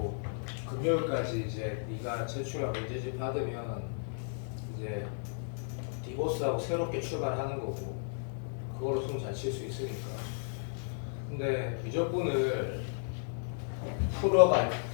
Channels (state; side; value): silent; right; digital silence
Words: 금요일까지 이제 네가 제출하고 문제집 받으면 이제 디보스하고 새롭게 출발하는 거고, 그걸로 숨 잘 칠 수 있으니까. 근데 미적분을 풀어봐,